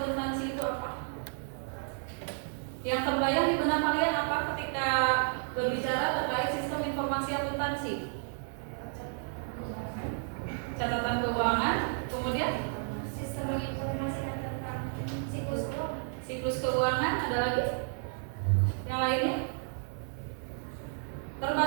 itu apa? Yang terbayang di benak kalian apa ketika berbicara terkait sistem informasi akuntansi? Catatan keuangan, kemudian Sistem informasi tentang siklus keuangan, ada lagi? Yang lainnya?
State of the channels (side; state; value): left; silent; 56 dB below the other